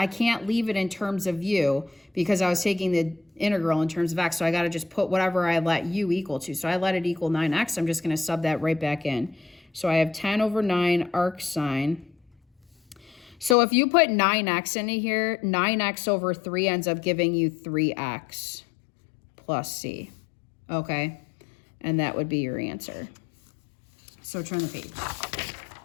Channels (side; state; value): right; drops out; at 13.6 s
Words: can't leave it in terms of u because I was taking the integral in terms of x, so I got to just put whatever I let u equal to. So I let it equal 9x. I'm just going to sub that right back in. So I have 10 over 9 arc sine. So if you put 9x into here, 9x over 3 ends up giving you 3x plus c, okay? And that would be your answer. So turn the page.